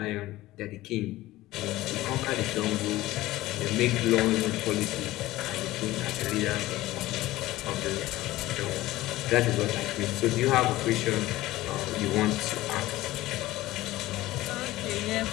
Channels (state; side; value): quieter; right; 17.0 dB